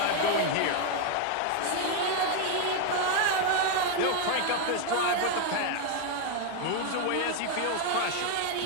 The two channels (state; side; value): different; both; correlation 0.01